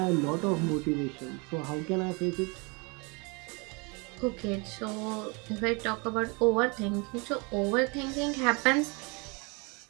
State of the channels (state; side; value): quieter; left; 30.4 dB